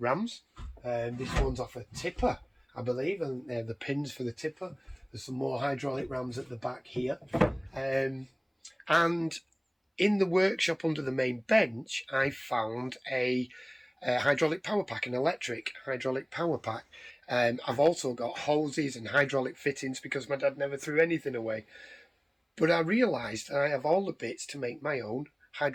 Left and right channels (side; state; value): both; identical; correlation 1.00